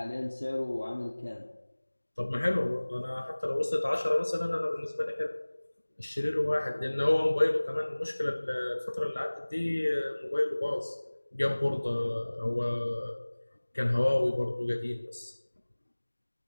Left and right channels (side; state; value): both; inverted; correlation -1.00